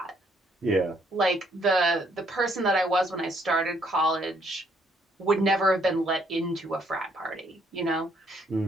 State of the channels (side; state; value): both; normal; correlation 0.68